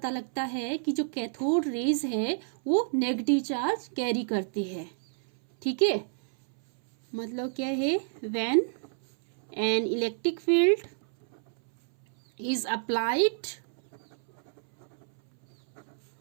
लगता है कि जो कैथोड रेज है वो नेगेटिव चार्ज कैरी करती है। ठीक है, मतलब क्या है, when an electric field is applied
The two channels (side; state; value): left; silent; 59 dB below the other